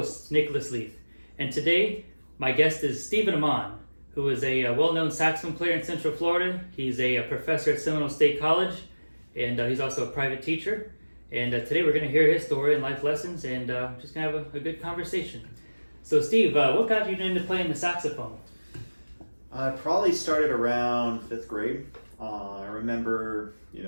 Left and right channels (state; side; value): inverted; both; correlation -1.00